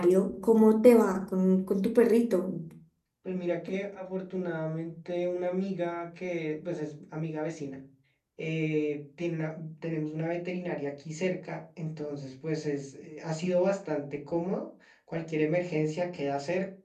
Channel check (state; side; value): identical; both; correlation 1.00